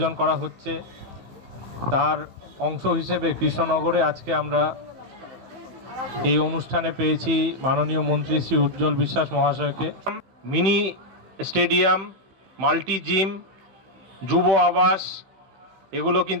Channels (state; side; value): late; left; 15 ms